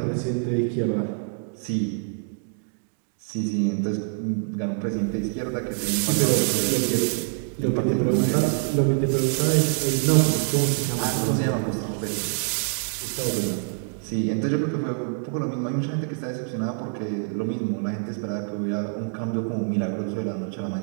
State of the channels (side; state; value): left; silent; 58 dB below the other